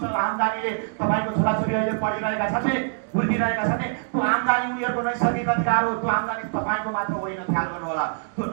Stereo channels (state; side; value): silent; left; digital silence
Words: आम्दानीले तपाईको छोराछोरी अहिले पढिरहेका छन् नि, बुझिरहेका छन् नि, त्यो आम्दानी उनीहरूको नैसर्गिक अधिकार हो। त्यो आम्दानी तपाईको मात्र होइन, ख्याल गर्नु होला। त्यो